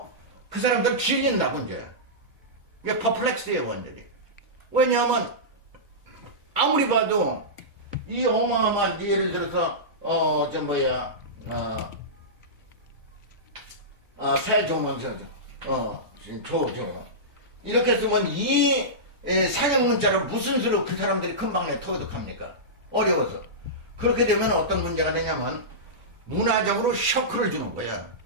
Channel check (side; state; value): both; normal; correlation -0.16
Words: 그 사람들 질린다고 이제. 이게 퍼플렉스예요, 완전히. 왜냐하면 아무리 봐도 이 어마어마한 예를 들어서 세조문서 이렇게 쓰면 이 상형 문자를 무슨 수로 그 사람들이 금방에 터득합니까? 어려워서. 그렇게 되면 어떤 문제가 되냐면 문화적으로 쇼크를 주는 거야.